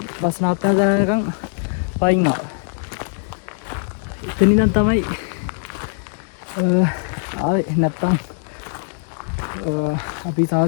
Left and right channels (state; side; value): silent; right; digital silence